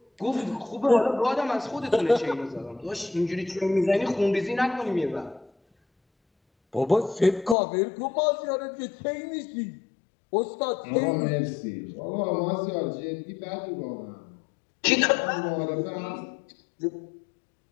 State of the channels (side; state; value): right; drops out; at 7.6 s